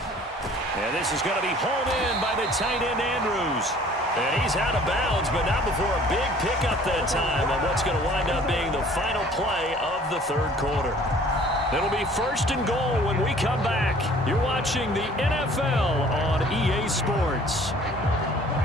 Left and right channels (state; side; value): normal; both; correlation 0.53